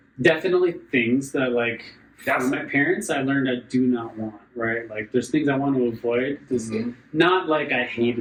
definitely things that, like, That's from my parents I learned I do not want, right? Like, there's things I want to avoid. Mhm. Not like I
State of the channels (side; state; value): both; identical; correlation 1.00